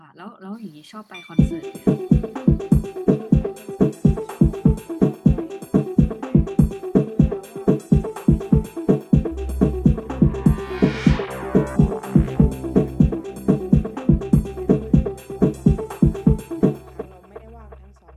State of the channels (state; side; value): identical; both; correlation 1.00